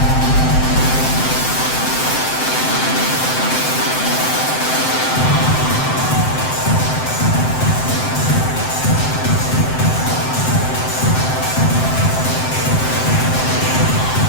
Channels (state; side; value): late; right; 7.7 ms